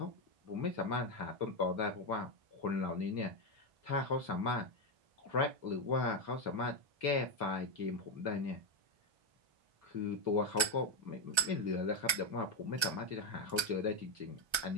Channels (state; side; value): late; left; 1.3 ms